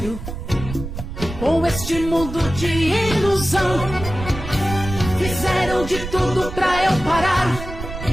sério com este mundo de ilusão. Fizeram de tudo pra eu parar,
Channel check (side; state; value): right; noise; rumble, 9 dB below the sound